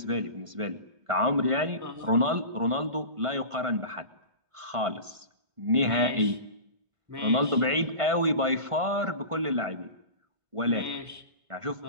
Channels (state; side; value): late; left; 1.5 ms